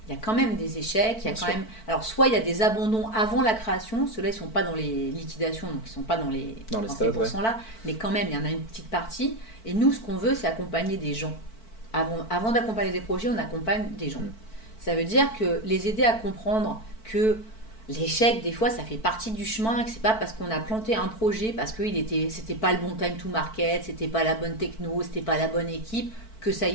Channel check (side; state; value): right; late; 4.5 ms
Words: Il y a quand même des échecs, il y a quand même... Alors, soit il y a des abandons avant la création, ceux-là, ils ne sont pas dans les liquidations, donc ils ne sont pas dans ces pourcents-là, mais quand même, il y en a une petite partie. Et nous, ce qu'on veut, c'est accompagner des gens. Avant d'accompagner des projets, on accompagne des gens. Ça veut dire que les aider à comprendre que l'échec, des fois, ça fait partie du chemin, que c'est pas parce qu'on a planté un projet, parce que c'était pas le bon time to market, c'était pas la bonne techno, c'était pas la bonne équipe, que ça